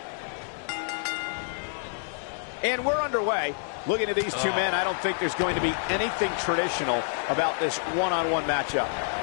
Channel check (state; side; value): silent; right; digital silence